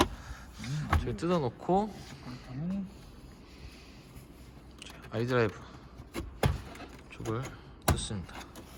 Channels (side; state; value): both; identical; correlation 1.00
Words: 저기 뜯어놓고 아이드라이브 쪽을 뜯습니다.